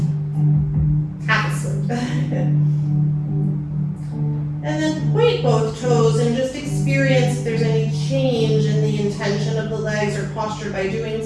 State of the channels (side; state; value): both; identical; correlation 1.00